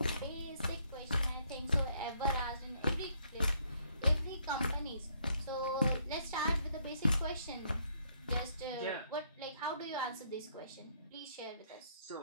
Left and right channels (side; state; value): both; inverted; correlation -0.69